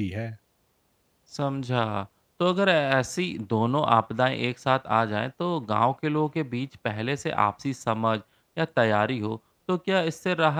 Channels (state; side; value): identical; both; correlation 1.00